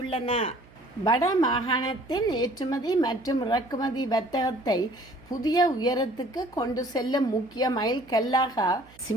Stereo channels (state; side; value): noise; right; hum, 25 dB below the sound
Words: வட மாகாணத்தின் ஏற்றுமதி மற்றும் இறக்குமதி வர்த்தகத்தை புதிய உயரத்துக்கு கொண்டு செல்லும் முக்கிய மைல்கல்லாக